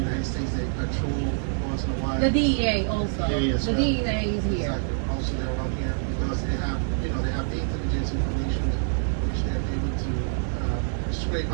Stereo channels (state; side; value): silent; left; 61 dB below the other